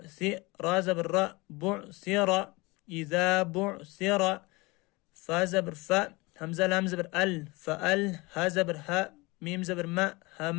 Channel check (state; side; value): quieter; right; 24.2 dB